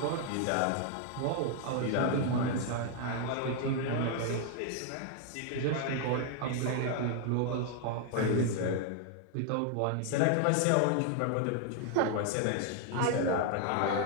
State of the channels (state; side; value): different; both; correlation 0.00